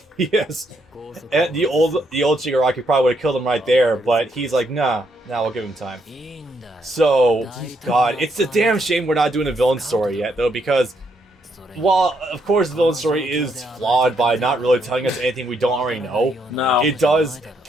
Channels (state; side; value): normal; both; correlation 0.75